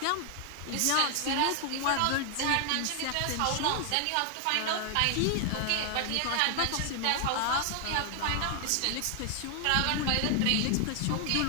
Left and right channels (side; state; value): both; different; correlation 0.00